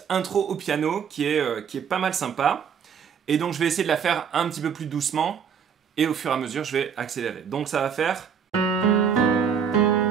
intro au piano qui est pas mal sympa. Et donc je vais essayer de la faire un petit peu plus doucement et au fur et à mesure, je vais accélérer. Donc ça va faire...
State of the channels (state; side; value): quieter; left; 7.2 dB